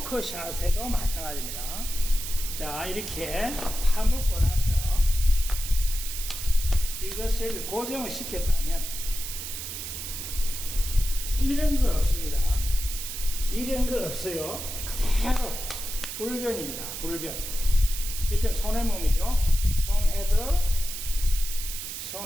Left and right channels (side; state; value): right; noise; hiss, 7 dB below the sound